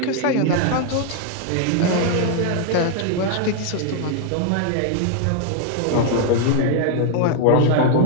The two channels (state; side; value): different; both; correlation 0.00